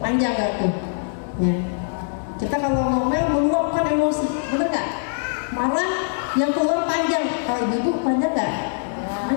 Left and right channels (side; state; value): right; silent; 60 dB below the other